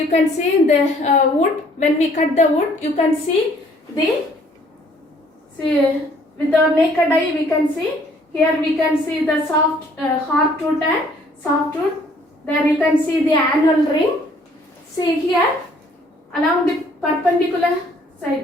can see the wood. When we cut the wood, you can see the, see with the naked eye we can see. Here we can see the soft hard tooth and soft tooth. There you can see the anal ring. See here along the perpendicular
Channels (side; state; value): both; normal; correlation 0.60